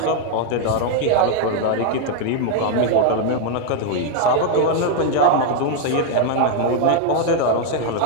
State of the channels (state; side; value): different; both; correlation 0.00